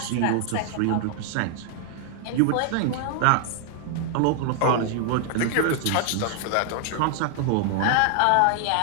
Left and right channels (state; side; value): different; both; correlation 0.00